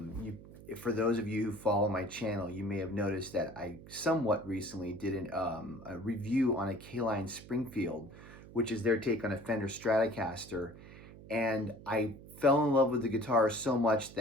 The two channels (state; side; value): noise; right; hum, 17 dB below the sound